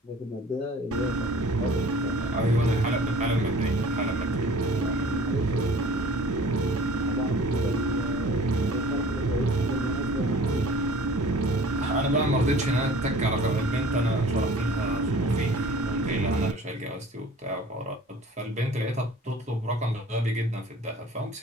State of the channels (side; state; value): both; normal; correlation 0.47